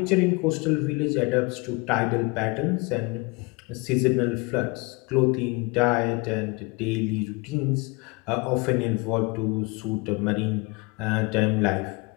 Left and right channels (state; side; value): quieter; right; 27.7 dB